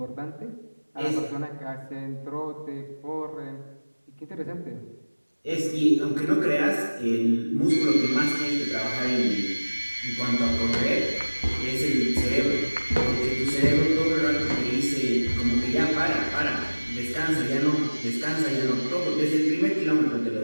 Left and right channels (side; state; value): both; inverted; correlation -1.00